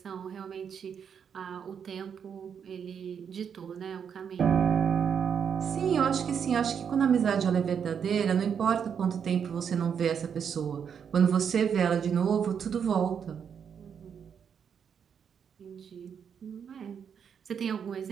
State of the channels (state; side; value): quieter; left; 7.4 dB